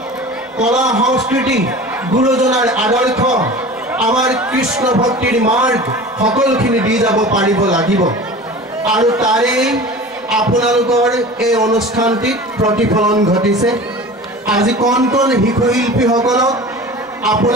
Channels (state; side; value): normal; both; correlation 0.37